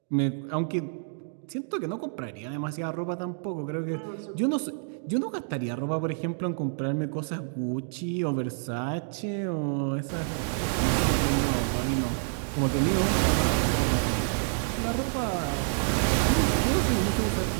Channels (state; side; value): silent; left; digital silence